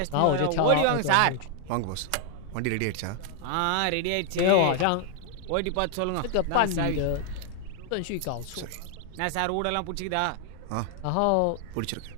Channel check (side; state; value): both; different; correlation 0.00